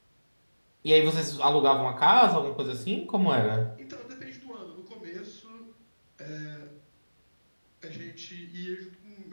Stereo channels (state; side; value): inverted; both; correlation -1.00